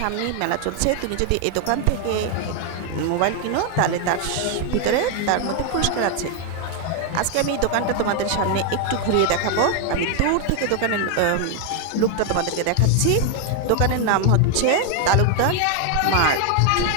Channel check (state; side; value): different; both; correlation 0.00